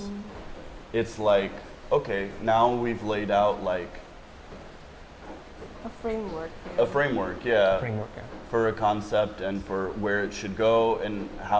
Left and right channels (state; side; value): identical; both; correlation 1.00